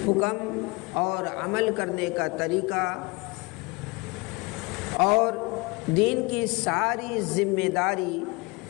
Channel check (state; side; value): quieter; right; 26.6 dB